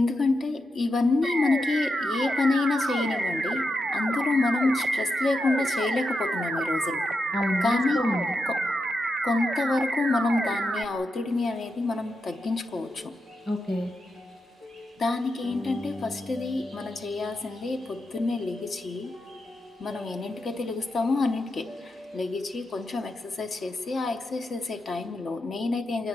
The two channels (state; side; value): normal; both; correlation 0.86